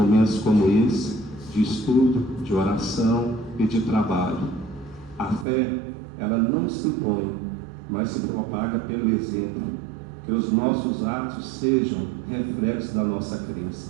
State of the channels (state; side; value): drops out; left; at 5.5 s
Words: como esse, de estudo, de oração e de trabalho. A fé, ela não se impõe, mas se propaga pelo exemplo. Que os nossos atos sejam reflexos da nossa